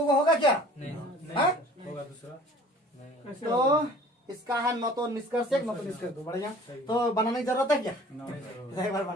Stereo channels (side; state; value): both; normal; correlation 0.48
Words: होगा क्या? नहीं होगा दूसरा। तो इसका है न तो निष्कर्ष एक, न तो निष्कर्ष दो। बढ़िया, तो बनाने की जरूरत है क्या? एक बार